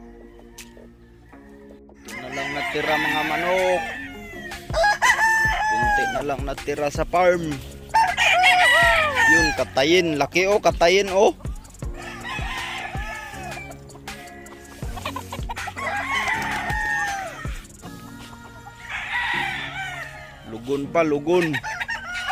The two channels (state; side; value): identical; both; correlation 1.00